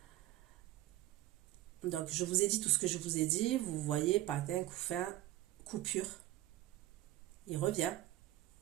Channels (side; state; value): left; quieter; 15.4 dB